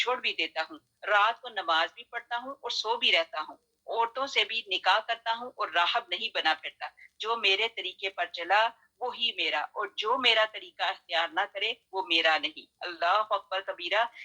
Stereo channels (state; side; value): identical; both; correlation 1.00